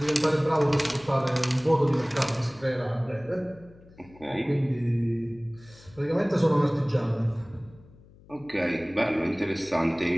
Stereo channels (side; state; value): left; noise; hum, 24 dB below the sound